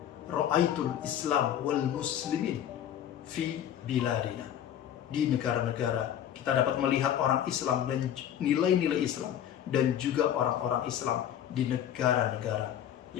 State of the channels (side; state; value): right; quieter; 10.4 dB